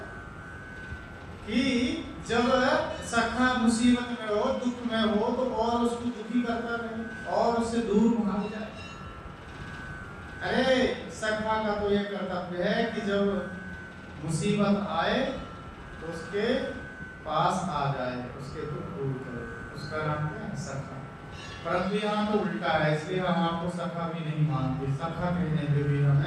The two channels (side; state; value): both; identical; correlation 1.00